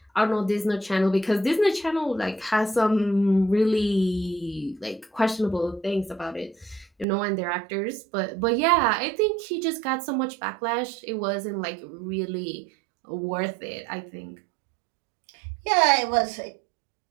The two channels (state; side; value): drops out; left; at 7.1 s